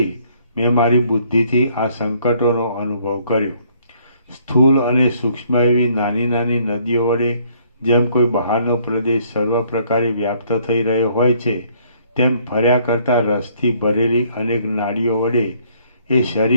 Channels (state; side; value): inverted; both; correlation -0.64